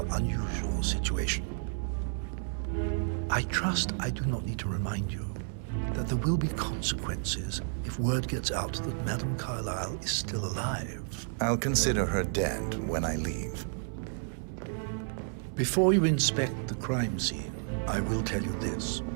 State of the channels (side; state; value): left; silent; digital silence